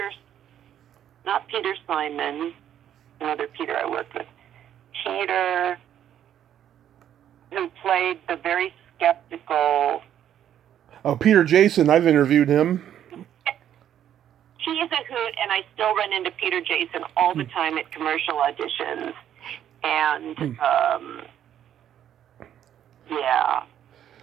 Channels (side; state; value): left; quieter; 10.4 dB